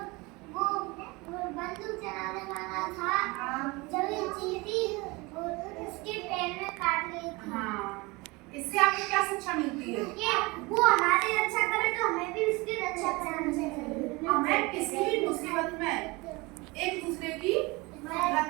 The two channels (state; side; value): quieter; left; 24.6 dB